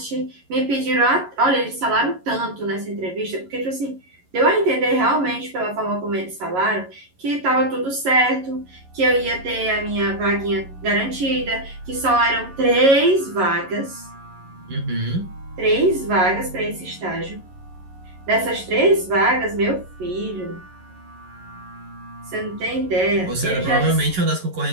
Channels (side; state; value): left; late; 11 ms